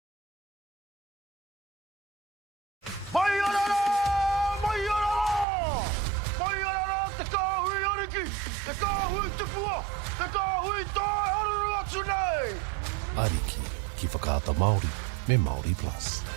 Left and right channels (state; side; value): drops out; left; at 5.5 s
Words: Ariki, ki whakaata Māori, me Māori Plus.